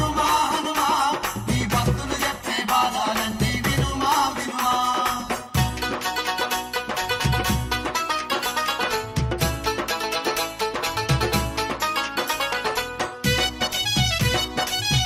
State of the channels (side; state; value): both; identical; correlation 1.00